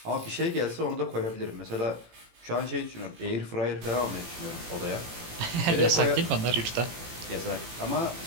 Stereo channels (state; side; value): late; left; 18 ms